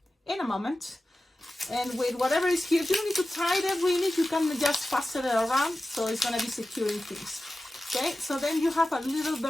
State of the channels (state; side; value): normal; both; correlation 0.94